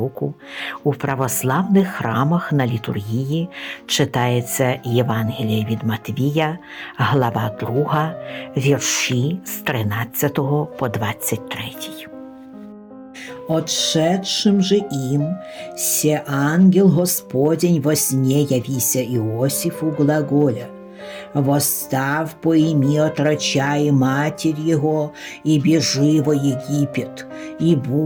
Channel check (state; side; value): identical; both; correlation 1.00